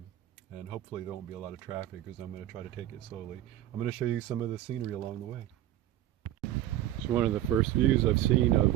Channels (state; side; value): quieter; left; 13.1 dB